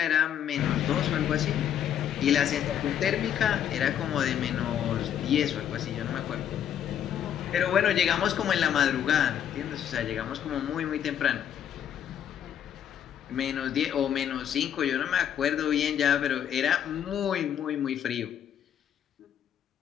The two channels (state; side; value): quieter; right; 9.6 dB